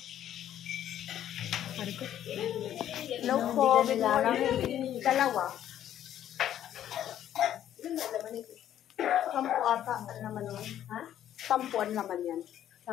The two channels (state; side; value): quieter; right; 11.2 dB